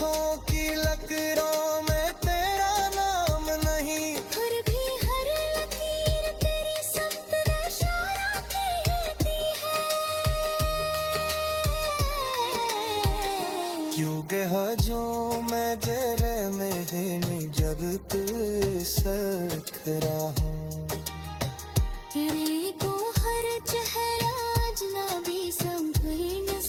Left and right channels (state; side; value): identical; both; correlation 1.00